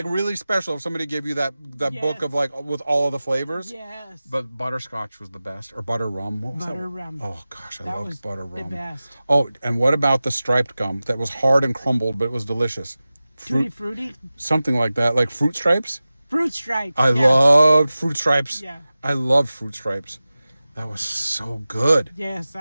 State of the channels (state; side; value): inverted; both; correlation -0.96